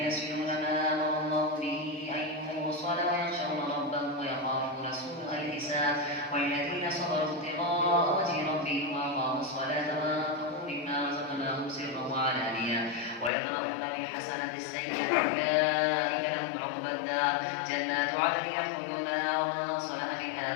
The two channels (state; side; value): drops out; right; at 13.3 s